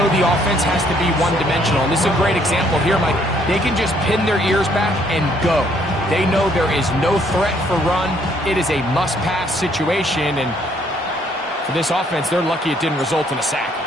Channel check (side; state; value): both; normal; correlation 0.66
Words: the offense has to be one-dimensional. And this is a great example here, Mike. They can just pin their ears back and go. They know there is no threat for run. It is a must-pass situation, and for this offense, they're lucky it didn't result in a sack.